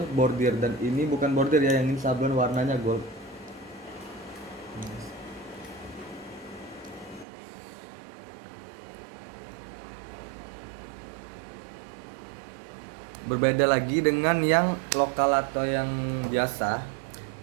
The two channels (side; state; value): left; drops out; at 7.2 s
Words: bordir, dan ini bukan bordir ya, yang ini sablon warnanya gold. Berbeda lagi dengan yang lokal atau yang biasa,